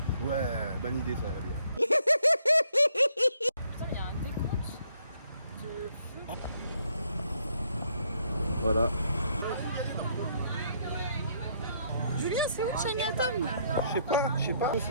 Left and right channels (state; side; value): inverted; both; correlation -0.69